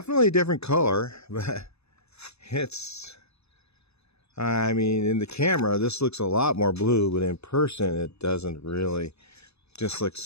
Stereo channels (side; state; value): right; late; 0.79 ms